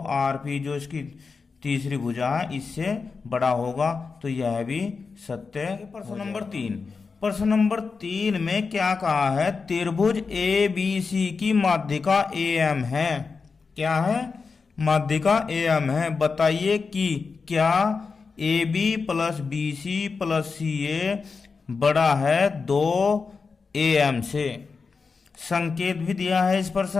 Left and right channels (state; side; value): quieter; right; 4.8 dB